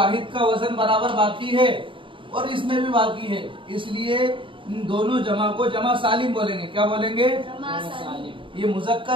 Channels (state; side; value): late; left; 0.25 ms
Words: का वजन बराबर बाकी है और इसमें भी बाकी है, इसलिए इन दोनों जमा को जमा सालिम बोलेंगे। क्या बोलेंगे? जमा सालिम। ये